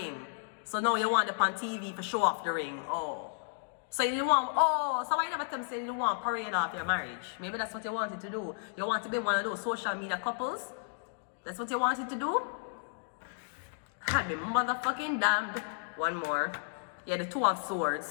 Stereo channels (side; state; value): right; silent; digital silence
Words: So now you want it on TV to show off the ring. Oh. So you want, so why you never tell me say you want to parade off your marriage? Maybe that's what you wanted to do. You want to be one of those social media couples? That's what you wanted to do? I'd be motherfucking damned. One more. Yeah, the Two of